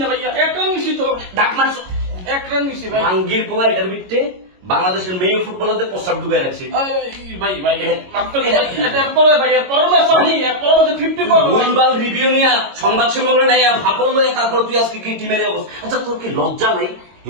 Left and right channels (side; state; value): left; late; 22 ms